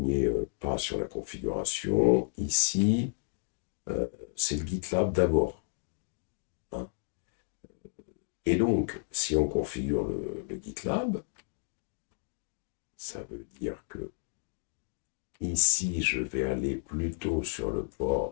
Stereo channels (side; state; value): right; silent; digital silence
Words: pas sur la configuration, ici, c'est le GitLab d'abord, hein. Et donc, si on configure le GitLab, ça veut dire que ici, je vais aller plutôt sur le